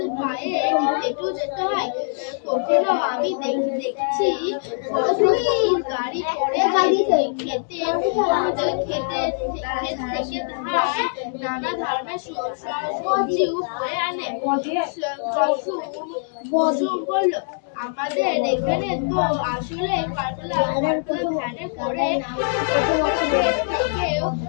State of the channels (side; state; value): right; silent; digital silence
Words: পায়ে হেঁটেও যেতে হয়। কখনো আমি দেখছি গাড়ি করে খেতে নানা ধরনের সবজিও বয়ে আনে। বসু বলল, আমাদের এখানে তো আসলে পাতলা ভ্যানে করে